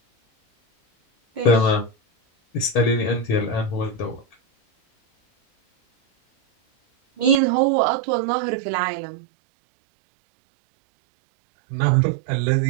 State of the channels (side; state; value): left; drops out; at 7.4 s